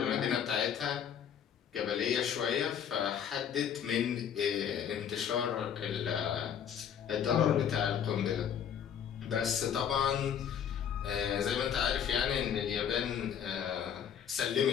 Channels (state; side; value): quieter; right; 8.5 dB